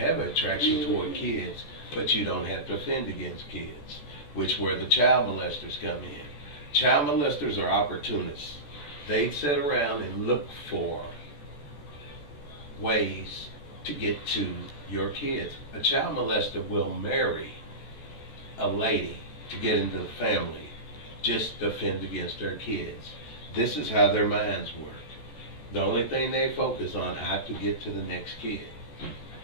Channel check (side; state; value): right; late; 14 ms